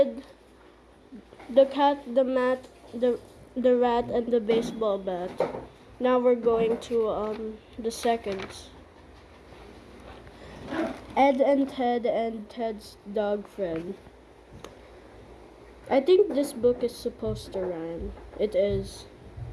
the cat, the mat, the rat, and the baseball bat. Now we're going to the seconds. Ed and Ted's dog friend. I think this book is supposed to rhyme. It is.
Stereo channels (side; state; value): both; identical; correlation 1.00